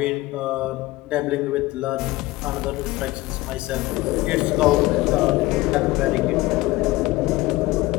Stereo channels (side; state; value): right; quieter; 19.2 dB